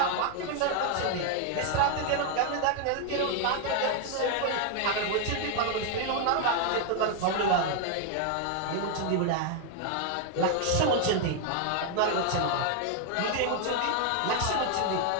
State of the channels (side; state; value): both; different; correlation 0.01